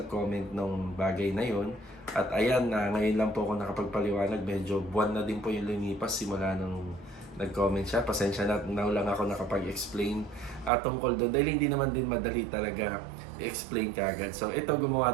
nung bagay na yon. At ayan, ngayon lang po ako nakapagpaliwanag. Medyo buwan na din po yung lumipas simula nung nag-comment siya. Pasensya na, now lang ako nakapag-explain tungkol doon. Dahil hindi naman din madali talaga i-explain kagad. So ito,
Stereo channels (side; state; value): left; drops out; at 10.7 s